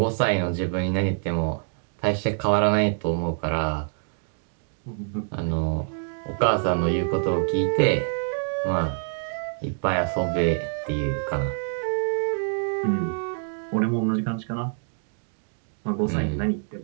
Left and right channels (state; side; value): silent; left; 61 dB below the other